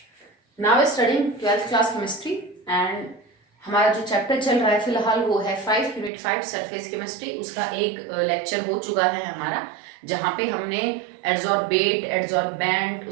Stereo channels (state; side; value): drops out; left; at 6.1 s